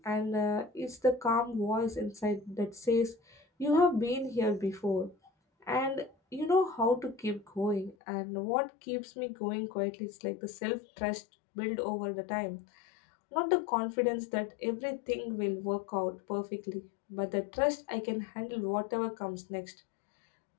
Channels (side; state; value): right; drops out; at 8.0 s